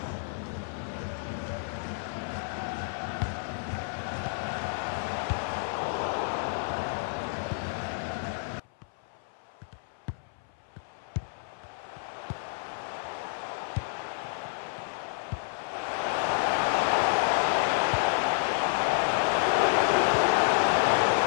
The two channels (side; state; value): right; silent; 58 dB below the other